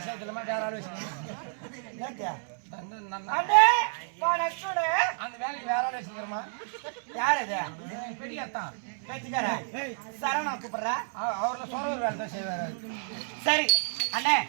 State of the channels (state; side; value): silent; left; 58 dB below the other